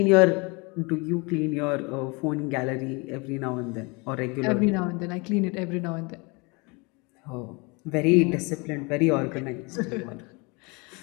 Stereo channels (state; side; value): quieter; right; 28.7 dB